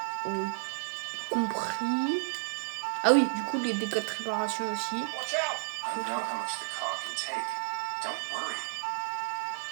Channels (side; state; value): left; silent; digital silence